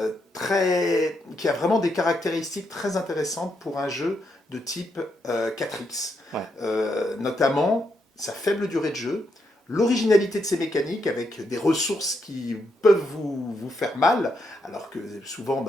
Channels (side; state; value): both; normal; correlation 0.80